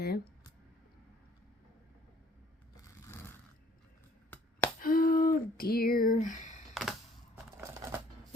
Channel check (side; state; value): both; normal; correlation 0.57